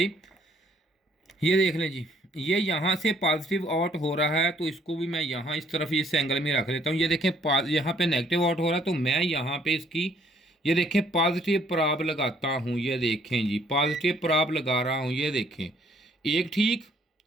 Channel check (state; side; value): normal; both; correlation 0.64